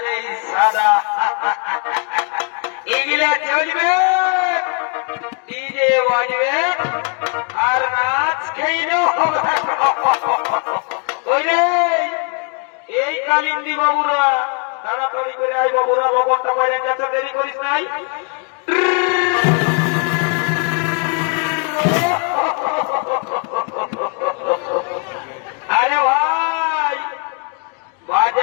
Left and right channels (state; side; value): quieter; right; 38.7 dB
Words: এই সাদা এগুলা চলবে, ডিজে বাজবে আর নাচ খেয়ে হবে। এই কালিন্দি বাবুরা তাড়াতাড়ি করে আই বাবুরা, লবণটা পড়ে গেছে, দেরি করিস নাই। আরে ভাই